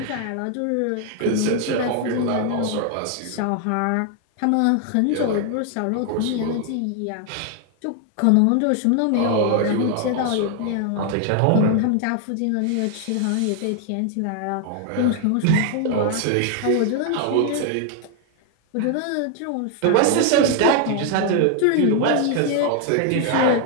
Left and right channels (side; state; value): both; different; correlation 0.00